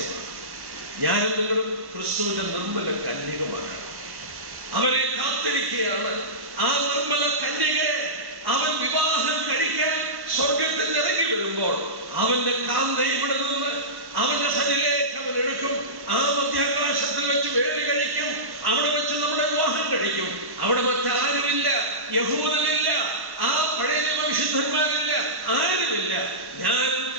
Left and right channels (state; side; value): late; left; 1.1 ms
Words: ഞാനും നിങ്ങളും ക്രിസ്തുവിന്റെ നിർമ്മല കന്യകമാരാണ്. അവനെ കാത്തിരിക്കുകയാണ്. ആ നിർമ്മല കന്യകയെ അവൻ വിവാഹം കഴിക്കാൻ സ്വർഗത്തിൽ ഇറങ്ങി വരുമ്പോൾ അവന്റെ കാന്ത ഇവിടെ നിന്ന് അവന്റെ സന്നിധിയിലേക്ക് അവൻ എടുക്കും. ആ മധ്യാകാശത്തിൽ വെച്ച് വേലി കഴിക്കും. അവിടെ വെച്ച് നമ്മുടെ വിവാഹം കഴിക്കും. അവിടെ മറ്റാരുമില്ല, യഹൂദനില്ല, ആ പഴയ വിശുദ്ധന്മാരില്ല, ആരുമില്ല. ഞാനും